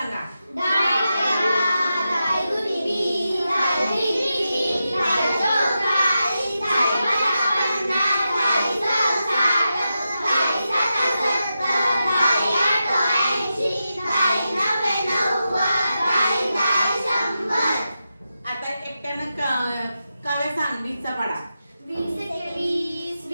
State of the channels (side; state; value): both; inverted; correlation -0.89